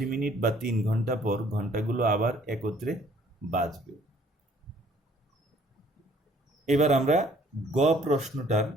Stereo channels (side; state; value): both; normal; correlation 0.59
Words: মিনিট বা 3 ঘন্টা পর ঘন্টাগুলো আবার একত্রে বাজবে। এবার আমরা গ প্রশ্নটার